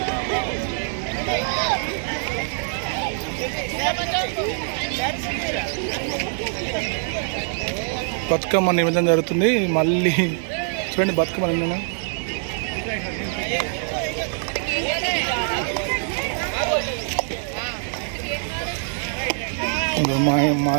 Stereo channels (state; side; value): silent; left; 56 dB below the other